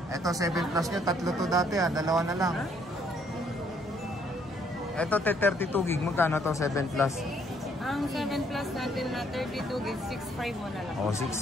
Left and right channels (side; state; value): both; normal; correlation 0.67